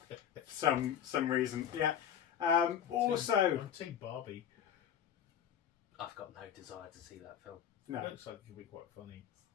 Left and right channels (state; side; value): quieter; right; 9.2 dB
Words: For some reason, yeah. Also, I'm Team Barbie. I've got no desire to see that film, no. It looks like it could be quite funny